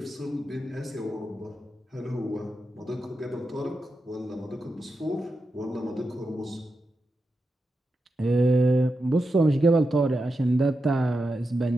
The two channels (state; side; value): normal; both; correlation 0.88